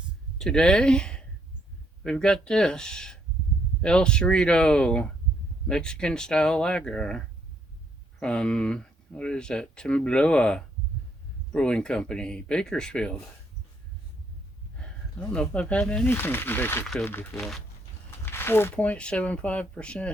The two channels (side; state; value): both; normal; correlation 0.71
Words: Today, we've got this El Cerrito Mexican style lager from, what is that, Temblor Brewing Company, Bakersfield. I don't know if I've had anything from Bakersfield before.